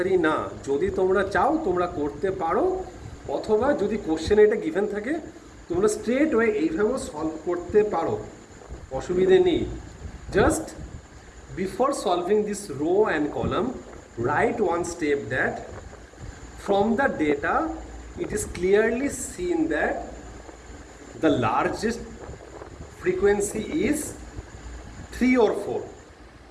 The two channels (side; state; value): both; identical; correlation 1.00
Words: না, যদি তোমরা চাও তোমরা করতে পারো, অথবা যদি কোশ্চেনে এটা গিভেন থাকে তোমরা স্ট্রেট ওয়ে এইভাবেও সলভ করতে পারো, অসুবিধে নেই। Just before solving this rho and column, right one step that from the data it is clearly seen that the largest frequency is 3 or 4.